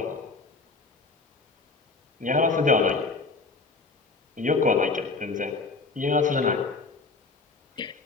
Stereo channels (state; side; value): quieter; right; 3.9 dB